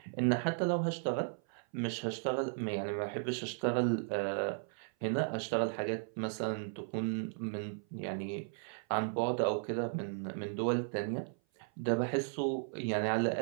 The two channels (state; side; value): silent; left; 54 dB below the other